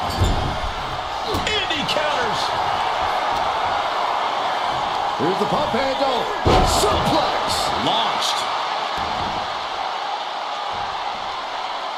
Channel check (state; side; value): identical; both; correlation 1.00